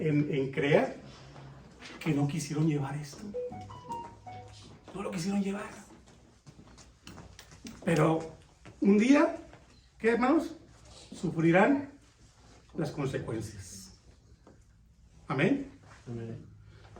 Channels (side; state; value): both; identical; correlation 1.00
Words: CREA que no quisieron llevar esto. No lo quisieron llevar. Pero un día, ¿qué, hermanos? Sufrirán las consecuencias. Amén. Amén.